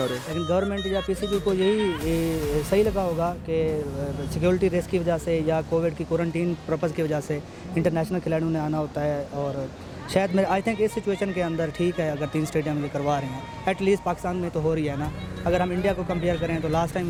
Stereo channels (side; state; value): both; identical; correlation 1.00